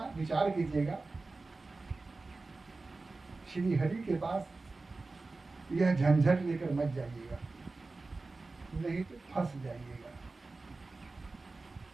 विचार कीजिएगा। श्री हरि के पास यह झंझट लेकर मत जाइएगा, नहीं तो फंस जाइएगा।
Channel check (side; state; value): left; quieter; 3.6 dB